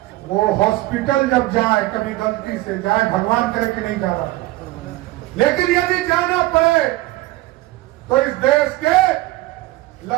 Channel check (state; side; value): quieter; left; 18.4 dB